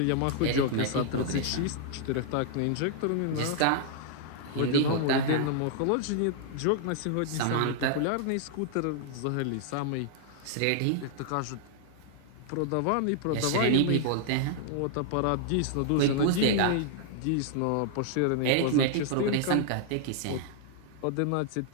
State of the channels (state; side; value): different; both; correlation -0.01